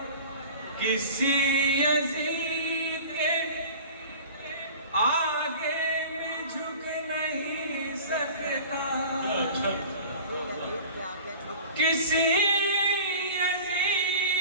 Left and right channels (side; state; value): both; inverted; correlation -0.40